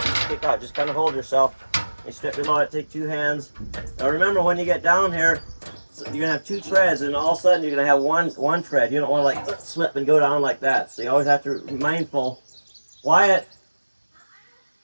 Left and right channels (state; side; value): inverted; both; correlation -1.00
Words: you kick out. Just kind of hold yourself. You step below it, take 2 hands. Now remember, when you get down here, you're going to have 2 treads, and all of a sudden you're going to have one tread. You don't want to like slip and go down like that. So you always have to be mindful. Wyatt,